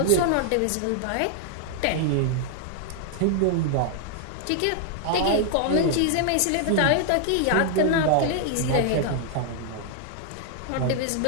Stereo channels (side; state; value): both; different; correlation -0.01